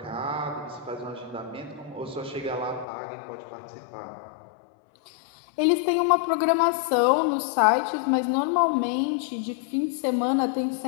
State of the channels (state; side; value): drops out; right; at 2.9 s